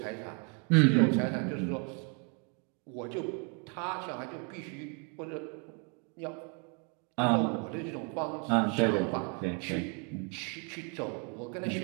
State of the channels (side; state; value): left; quieter; 37.3 dB